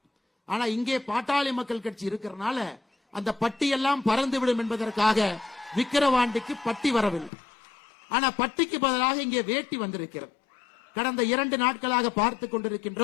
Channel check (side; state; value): right; drops out; at 7.3 s